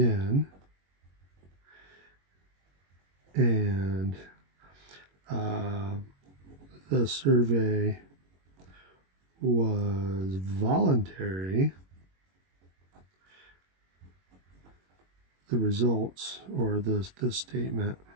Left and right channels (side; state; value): left; late; 21 ms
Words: and the survey was voluntary, the results, or this statement,